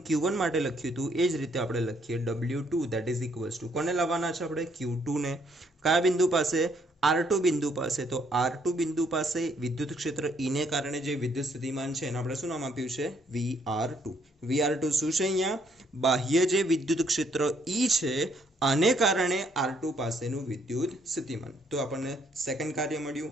Q1 માટે લખ્યું હતું એ જ રીતે આપણે લખીએ W2, that is equals two કોને લાવવાના છે આપણે Q2 ને કયા બિંદુ પાસે R2 બિંદુ પાસે। તો R2 બિંદુ પાસે વિદ્યુત ક્ષેત્ર E ને કારણે જે વિદ્યુત સ્થિતિમાન છે એને આપણે શું નામ આપ્યું છે VR2। VR2 શું છે અહીંયા બાહ્ય જે વિદ્યુત ક્ષેત્ર E છે આને કારણે R2 પાસેનું વિદ્યુત સ્થિતિમાન। તો આપણને સેકન્ડ કાર્ય મળ્યું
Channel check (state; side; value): normal; both; correlation 0.69